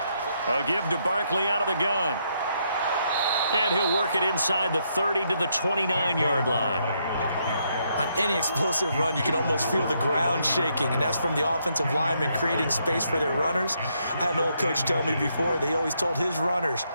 A give to Barkley out of the gun. And he'll work it inside the 30 to the 29-yard line. On any explosive run, you can almost feel the ground shaking, and that's from the offensive linemen creating space for their runners. I had an old coach tell me before, they always told his runners,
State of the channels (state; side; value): inverted; both; correlation -0.76